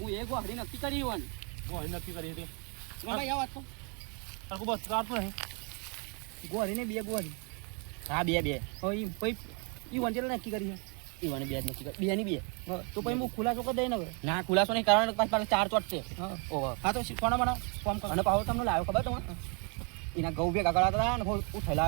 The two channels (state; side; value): quieter; left; 35.5 dB